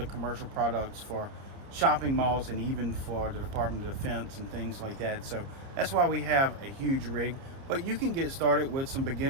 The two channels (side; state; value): left; late; 30 ms